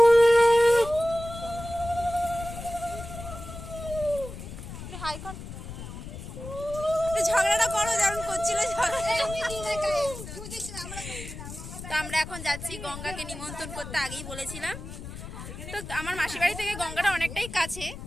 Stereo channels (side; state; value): left; noise; rumble, 11 dB below the sound